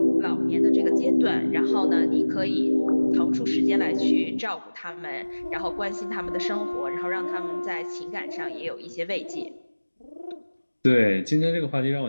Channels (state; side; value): inverted; both; correlation -1.00